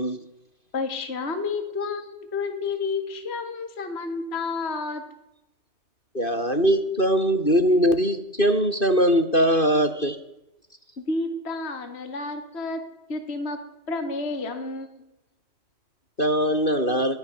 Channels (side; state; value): right; late; 2.5 ms